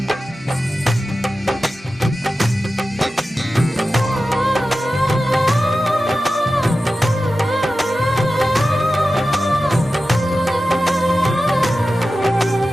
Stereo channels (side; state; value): both; normal; correlation 0.94